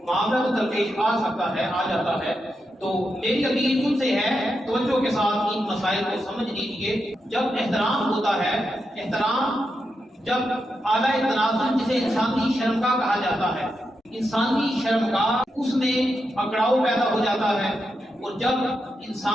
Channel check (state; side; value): normal; both; correlation 0.86